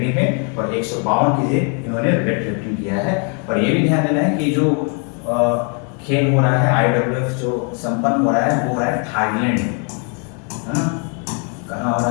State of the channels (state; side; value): quieter; right; 38.5 dB